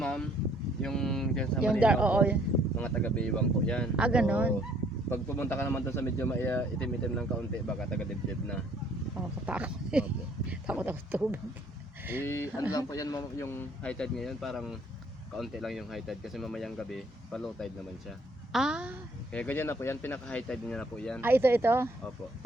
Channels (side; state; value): both; normal; correlation 0.62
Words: yung dyan sa Yung Malinaw oo. po, mga taga-Baywang po yan. Ah, ganon. So, pag pumunta ka naman doon sa medyo itim-itim ng kaunti, baka taga-dibdib na. Nakakatakot. Opo. Takot ako sa tubig. Ano lang po yan yung high tide ngayon, parang kaunti lang yung high tide kasi mamayang gabi, pa low tide naman siya. Ah, Kaya ganyan na po yan, pinaka high tide niya na po yan. ito. Opo.